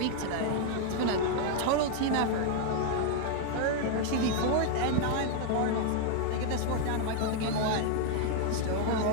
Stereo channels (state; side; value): different; both; correlation 0.00